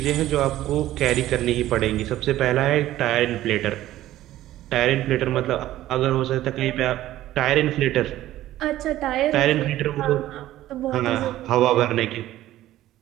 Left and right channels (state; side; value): quieter; left; 14.4 dB